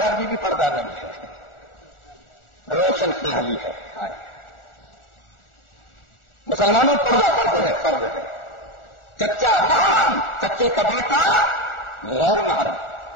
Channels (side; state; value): right; late; 1.4 ms